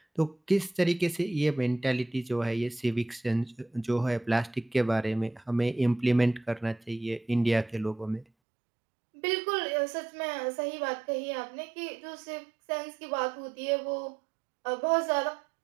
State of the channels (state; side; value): drops out; left; at 8.2 s